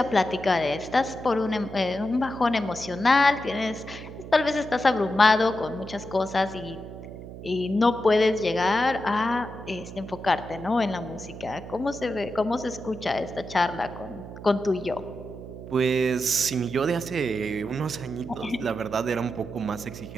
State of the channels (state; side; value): noise; right; hum, 12 dB below the sound